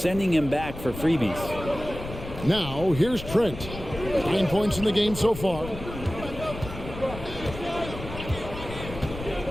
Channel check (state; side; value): noise; left; rumble, 11 dB below the sound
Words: him back for freebies. Now, here's Trent. 9 points in the game so far.